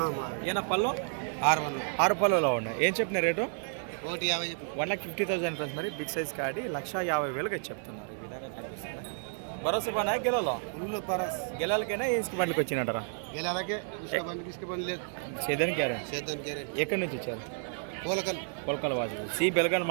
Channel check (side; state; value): left; silent; 57 dB below the other